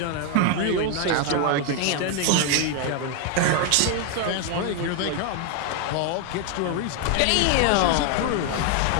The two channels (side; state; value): both; different; correlation 0.01